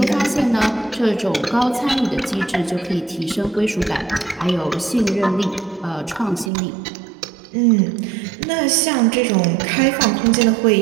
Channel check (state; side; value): drops out; left; at 6.5 s